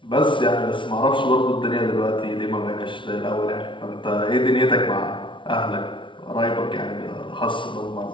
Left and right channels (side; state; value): right; late; 0.24 ms